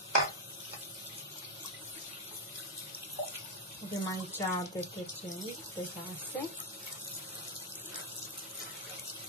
Avem aici detergent pe vase.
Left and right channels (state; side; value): normal; both; correlation 0.02